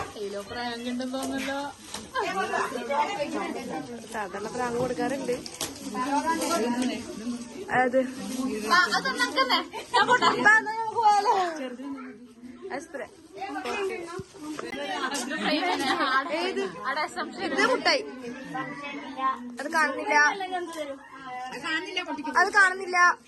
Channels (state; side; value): identical; both; correlation 1.00